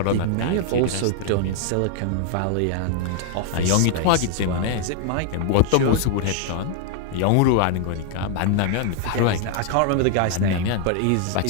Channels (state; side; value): different; both; correlation 0.00